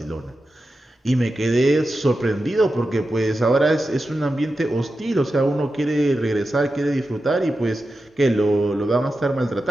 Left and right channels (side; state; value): both; normal; correlation 0.91